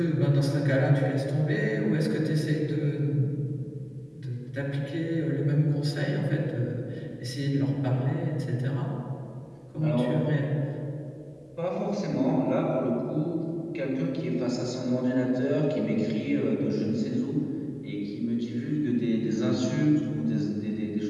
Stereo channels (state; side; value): identical; both; correlation 1.00